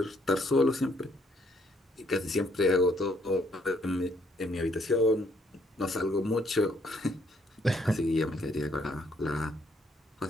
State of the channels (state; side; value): normal; both; correlation 0.69